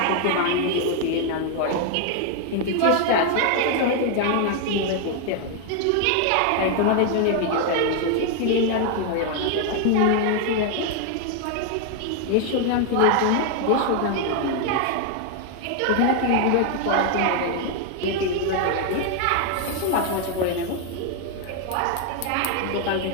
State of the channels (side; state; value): both; different; correlation 0.00